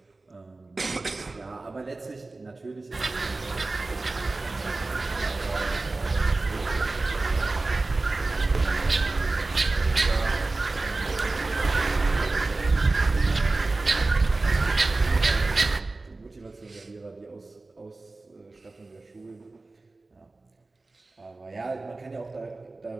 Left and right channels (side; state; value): left; quieter; 3.3 dB